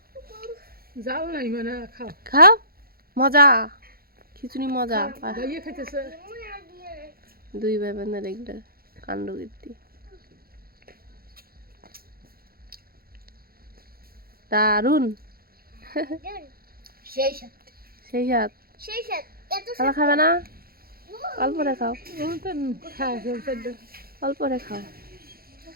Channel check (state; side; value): late; left; 0.44 ms